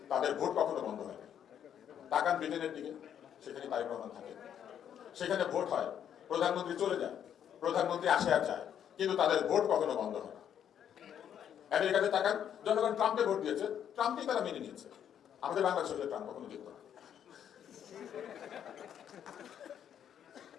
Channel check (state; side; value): quieter; right; 9.3 dB